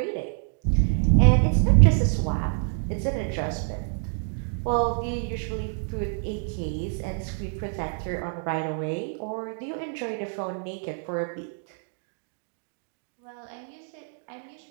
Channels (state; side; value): silent; left; 60 dB below the other